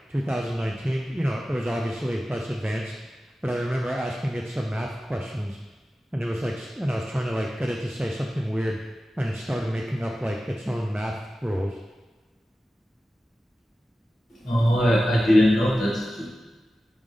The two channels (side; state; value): both; normal; correlation 0.94